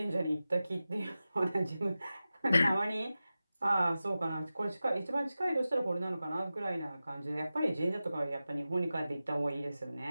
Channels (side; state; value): both; inverted; correlation -0.94